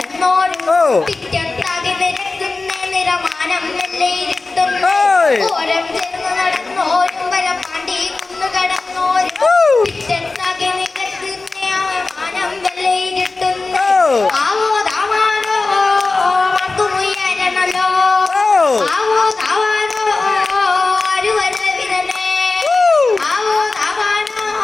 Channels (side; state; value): right; quieter; 3.6 dB